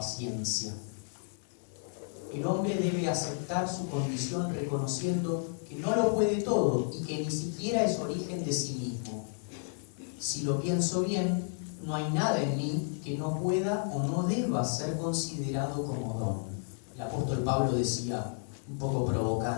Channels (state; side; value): silent; right; 56 dB below the other